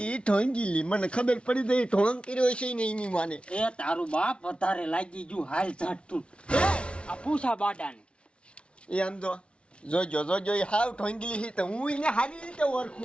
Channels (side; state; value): right; late; 0.059 ms